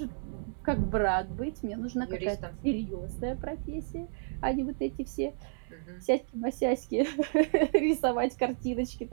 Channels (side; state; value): left; silent; 57 dB below the other